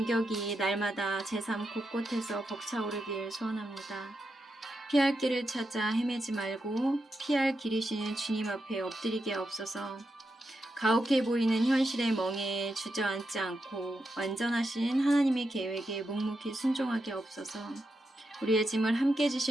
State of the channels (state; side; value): normal; both; correlation 0.86